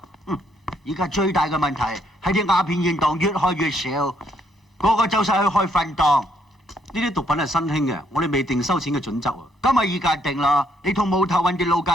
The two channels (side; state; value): both; normal; correlation 0.71